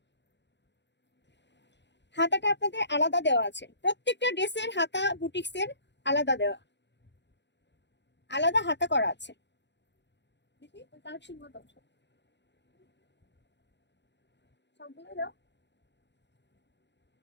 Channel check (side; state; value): right; late; 0.52 ms